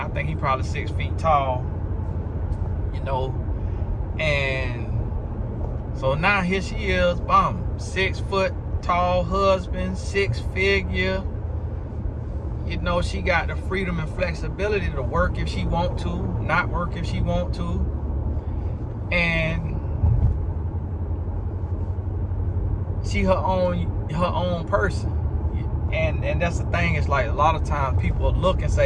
think he probably 6 feet tall. You know. And so now here she is, 6 foot tall husband, 6 figure. You know, she got the freedom and flexibility to work if she want to, not work if she want to. And she her own person. And that's the thing, it's like a lot of times people look and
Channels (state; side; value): identical; both; correlation 1.00